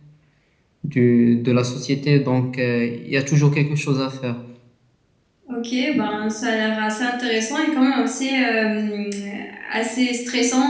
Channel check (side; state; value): both; identical; correlation 1.00